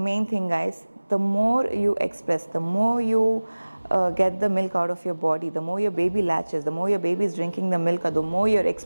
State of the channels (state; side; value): inverted; both; correlation -1.00